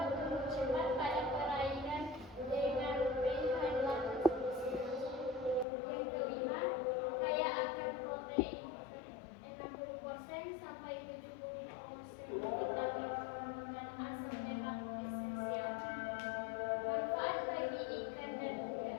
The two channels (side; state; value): right; drops out; at 5.7 s